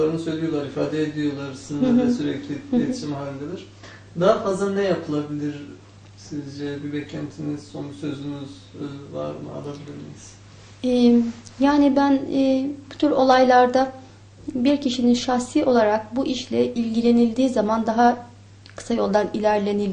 söylüyorlar, ifade ediyorlar. Sizinle de sürekli iletişim halindedir. Daha fazla ne yapılabilir sizce? Bir beklentiniz, son sözünüz var mı? Alabilir miyiz? Yani ben bu tür olaylarda bir kişinin şahsi olarak bu işle ilgilenildiği zaman daha kısa yoldan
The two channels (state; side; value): identical; both; correlation 1.00